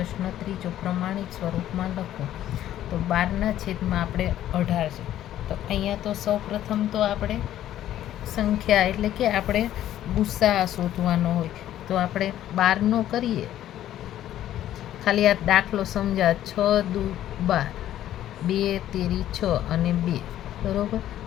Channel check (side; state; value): right; quieter; 12.3 dB